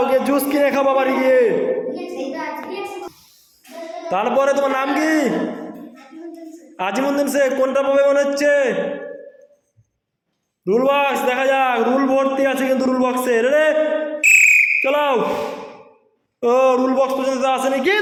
গিয়ে জুস কিনে খাবা বাড়ি গিয়ে। তারপরে তোমার নাম কি? আজিমুদ্দিন শেখ। কোনটা পাবে মনে হচ্ছে? রুল বক্স, দেখা যাক। রুল ভর্তি আছে কিন্তু রুল বক্সে। রে চালাও। ও রুল বক্স পর্যন্ত আসেনি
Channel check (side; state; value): both; identical; correlation 1.00